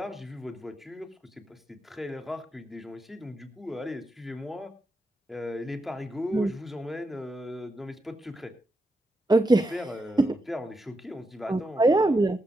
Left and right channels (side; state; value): both; normal; correlation 0.85